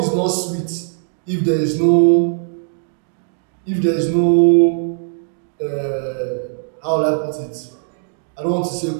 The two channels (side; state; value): left; silent; digital silence